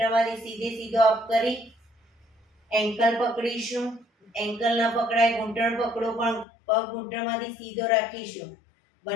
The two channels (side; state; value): right; drops out; at 6.5 s